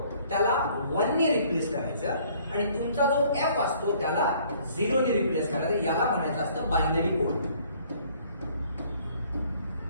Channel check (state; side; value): inverted; both; correlation -0.59